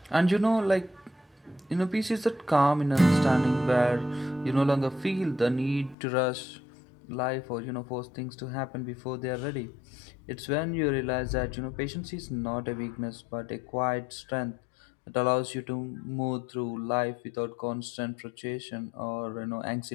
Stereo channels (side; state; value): right; drops out; at 6.0 s